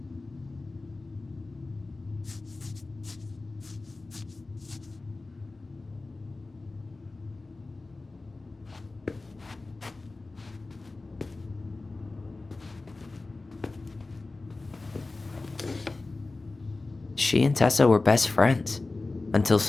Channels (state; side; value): quieter; right; 3.4 dB